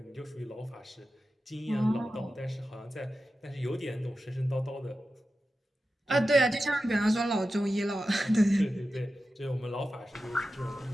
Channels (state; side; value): normal; both; correlation 0.92